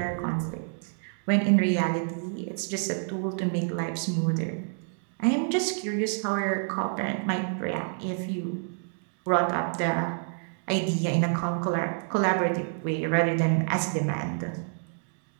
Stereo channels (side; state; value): left; silent; digital silence